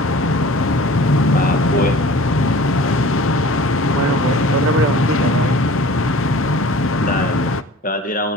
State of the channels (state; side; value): normal; both; correlation 0.44